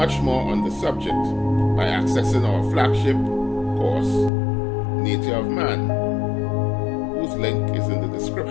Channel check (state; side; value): drops out; right; at 4.3 s